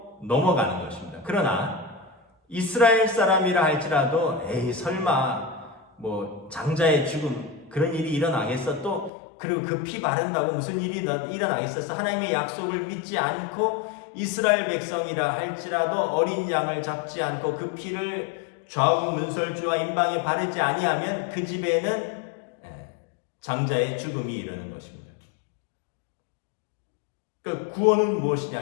넘어가는 것입니다. 그러나 이스라엘 사람이라 할지라도 에이 설마 뭐 장자의 죽음 그런 일이 일어나겠어 또 그리고 그 피 바른다고 무슨 일이 일어나겠어 하나님의 약속을 믿지 않고 이스라엘 백성이라 할지라도 어린 양을 잡지 않고 그 피를 좌우 문설주와 임방에 바르지 아니하면 그 집에는 장자의 죽음이 이르는 것입니다. 그 구원은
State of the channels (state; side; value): drops out; right; at 9.1 s